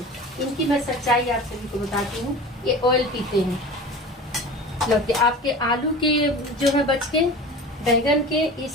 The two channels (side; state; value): both; normal; correlation 0.36